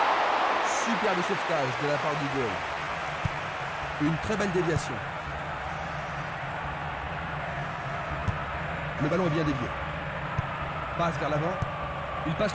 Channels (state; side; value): identical; both; correlation 1.00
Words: Superbe sauvetage de la part du goal. Une très belle déviation. Le ballon est bien dévié. Passe vers l'avant. Il